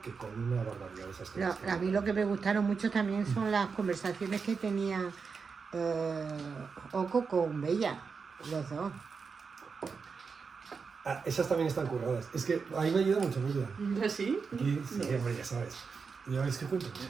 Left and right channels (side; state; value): left; quieter; 5.3 dB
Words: que con una barbaridad de esas cosas. A mí lo que me gustaron mucho también son las conversaciones que tenía Oco con Bella, los dos. Esas también están curradas. Es que ahí me ayuda mucho Bella. ¿Sí? Sí, hombre, ya sabes. Ya veis que cuento.